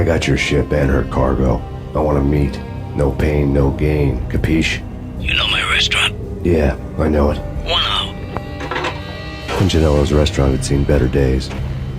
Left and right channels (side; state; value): both; identical; correlation 1.00